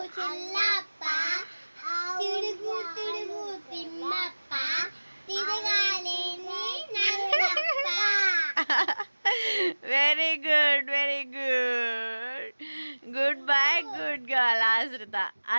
Very good, very good. Good bye, good girl.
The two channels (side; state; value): both; inverted; correlation -1.00